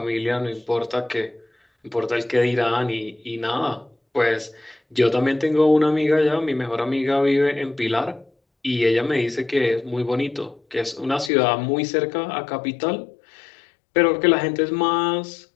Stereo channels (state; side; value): drops out; right; at 11.3 s